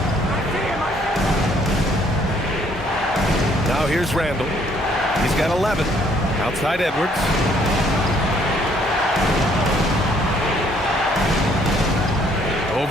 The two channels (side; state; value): both; normal; correlation 0.65